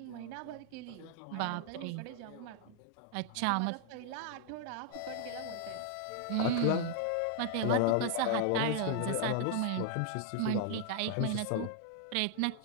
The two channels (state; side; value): different; both; correlation 0.00